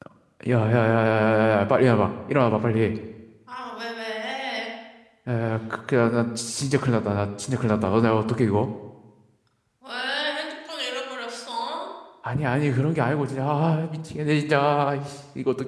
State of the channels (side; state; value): both; identical; correlation 1.00